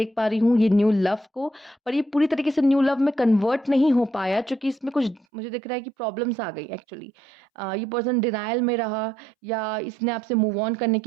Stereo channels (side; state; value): left; drops out; at 5.2 s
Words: पा रही हूँ ये न्यू लव को, पर ये पूरी तरीके से न्यू लव में कन्वर्ट नहीं हो पाया क्योंकि इसमें कुछ मुझे दिख रहा है कि प्रॉब्लम्स आ गई एक्चुअली। ये पर्सन डिनायल में रहा या इसने आपसे मूव ऑन करने